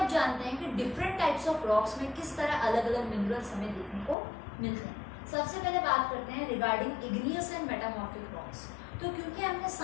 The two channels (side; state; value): right; drops out; at 4.2 s